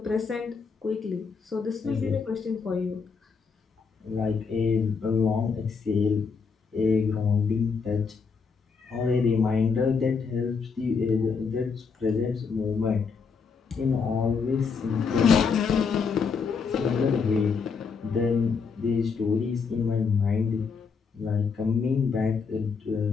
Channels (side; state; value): right; quieter; 5.4 dB